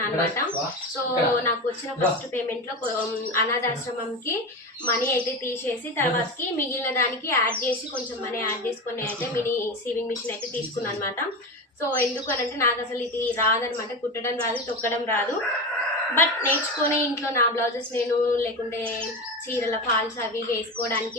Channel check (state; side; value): normal; both; correlation 0.22